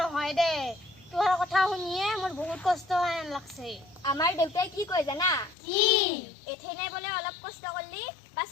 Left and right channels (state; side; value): drops out; right; at 5.6 s